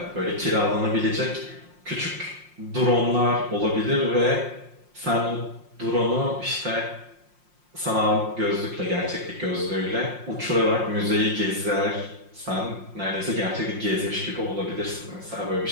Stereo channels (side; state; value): left; late; 5.6 ms